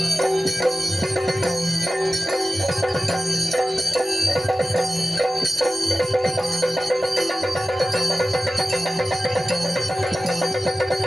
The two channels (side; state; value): both; normal; correlation 0.96